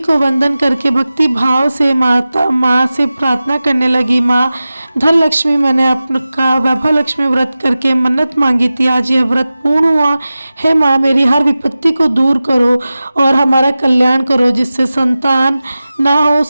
वंदन करके भक्ति भाव से माँ से प्रार्थना करने लगी। माँ धन लक्ष्मी, मैंने आपका वैभव लक्ष्मी व्रत करके मन्नत मांगी थी, आज यह व्रत पूर्ण हुआ है। माँ मेरी हर विपत्ति को दूर करो और हमारा कल्याण करो, जिससे संतान ना हो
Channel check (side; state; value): both; inverted; correlation -0.95